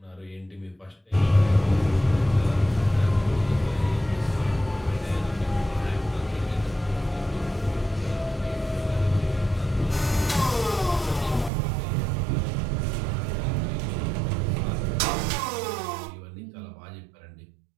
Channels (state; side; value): drops out; left; at 11.5 s